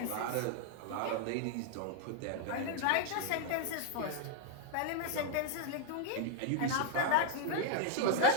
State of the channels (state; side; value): different; both; correlation 0.00